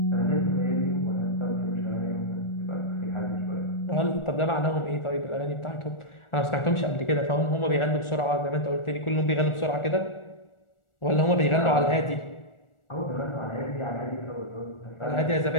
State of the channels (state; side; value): late; right; 1.4 ms